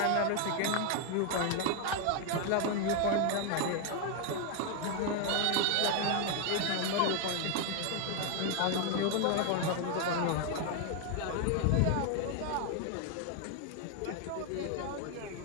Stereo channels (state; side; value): different; both; correlation 0.00